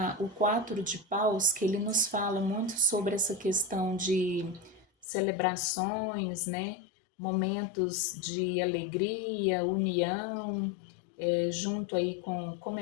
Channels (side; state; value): right; drops out; at 5.1 s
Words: o 4 de paus, que ele nos fala muito sobre essa questão de celebrações, né? Momentos de alegria, união, junto aí com